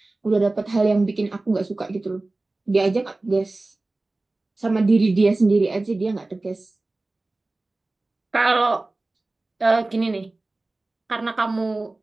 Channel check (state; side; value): quieter; left; 3.1 dB